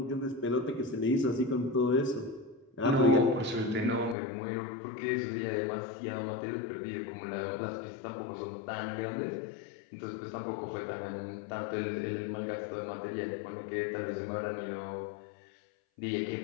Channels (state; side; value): drops out; right; at 4.2 s